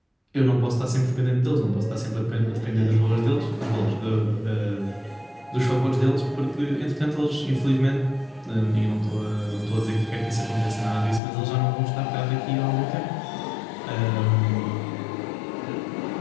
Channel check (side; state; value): right; drops out; at 11.2 s